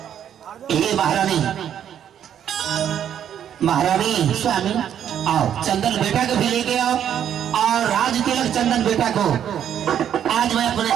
ये महारानी, महारानी स्वामी, आओ चंदन बेटा को भी लेके आओ और राज तिलक चंदन बेटा को आज मैं अपने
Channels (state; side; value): quieter; left; 9.6 dB